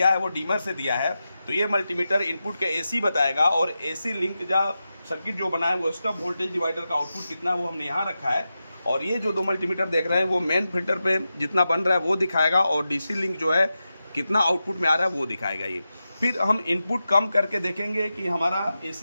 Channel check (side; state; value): both; inverted; correlation -0.91